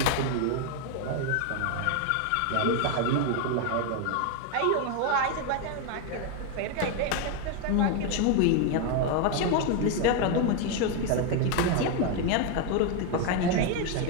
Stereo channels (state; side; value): different; both; correlation 0.01